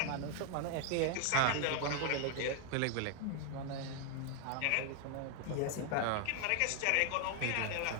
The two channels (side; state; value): both; different; correlation 0.00